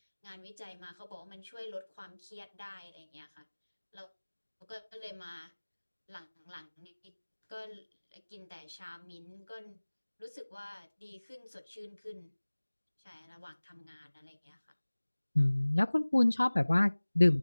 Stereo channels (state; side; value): inverted; both; correlation -1.00